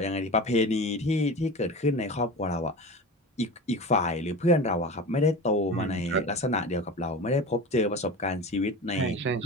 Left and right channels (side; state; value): both; normal; correlation 0.31